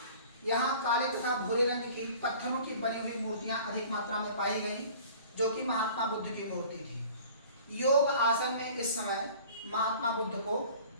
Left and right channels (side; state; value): both; inverted; correlation -0.47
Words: यहाँ काले तथा भूरे रंग की पत्थरों की बनी हुई मूर्तियां अधिक मात्रा में पाई गई, जो कि महात्मा बुद्ध की मूर्ति थी। योग आसन में इस समय महात्मा बुद्ध को